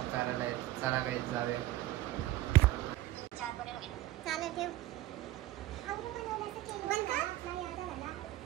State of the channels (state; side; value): quieter; left; 15.5 dB